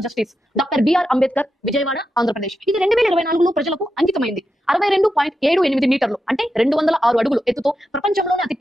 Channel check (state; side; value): normal; both; correlation 0.88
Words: justice, doctor BR Ambedkar, Vijayawada, Andhra Pradesh. ఇది 2024లో ప్రజలకు అంకితమైంది. 62.78 మీటర్లు అంటే 206 అడుగులు ఎత్తుతో ప్రపంచంలోని అతి